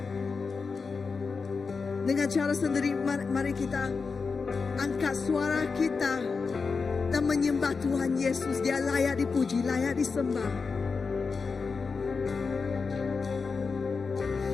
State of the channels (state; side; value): quieter; right; 4.8 dB